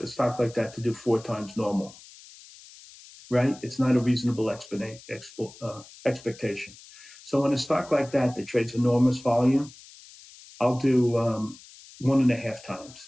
stock like that to do 4 times normal, right? It's not a reasonable expectation. So in a stock like that trades enormous volume, I'll do 1.5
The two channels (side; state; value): left; noise; hiss, 21 dB below the sound